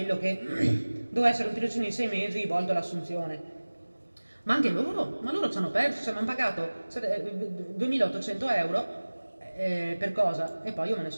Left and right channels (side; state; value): both; inverted; correlation -1.00